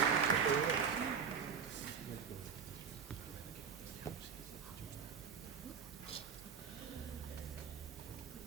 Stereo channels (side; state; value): left; quieter; 6.5 dB